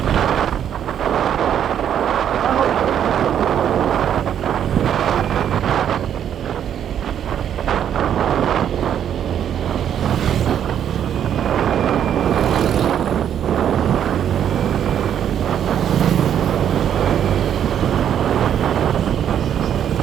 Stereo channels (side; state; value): left; quieter; 9.5 dB